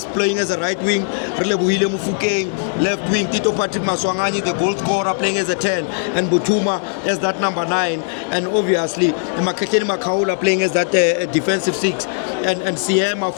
playing as a right wing, Relebuhile Mufukeng left wing, Tito Patrick Maswangani the goal scorer playing as a 10, and Mutuma as that number 9, and obviously Makakeni Makaula playing as that defensive 6, and Siema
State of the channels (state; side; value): silent; right; 67 dB below the other